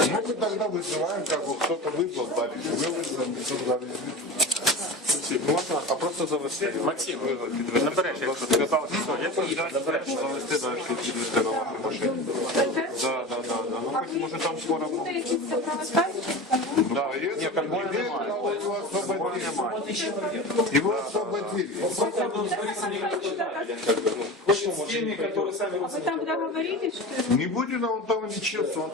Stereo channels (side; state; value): both; normal; correlation 0.30